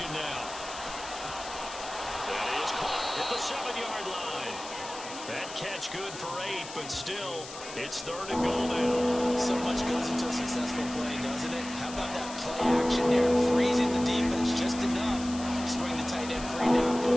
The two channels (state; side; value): noise; left; hiss, 13 dB below the sound